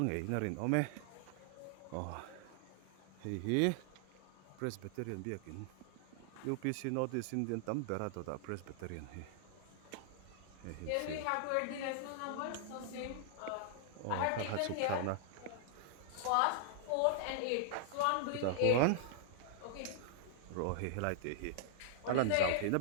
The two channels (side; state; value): both; different; correlation -0.01